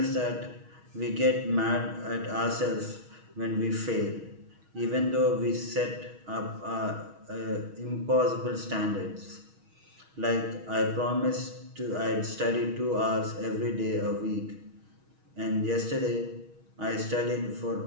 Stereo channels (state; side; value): late; left; 6.3 ms